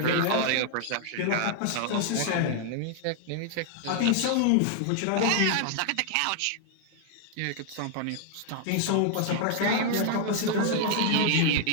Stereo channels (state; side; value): different; both; correlation 0.00